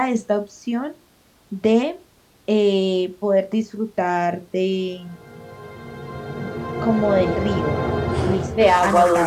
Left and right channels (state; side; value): identical; both; correlation 1.00